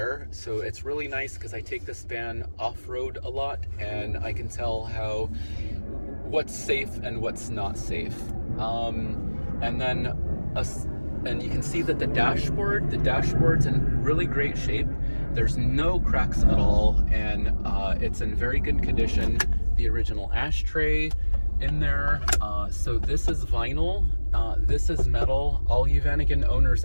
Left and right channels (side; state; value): both; inverted; correlation -1.00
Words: So it's really nice because I take this van off-road a lot, and I can tell what's safe and what's not safe. And you can see that the dashboard's in really great shape. There's no cracks at all, and it's in very good condition. The original ashtray in there. So this is vinyl, this is metal. All you Vanagon owners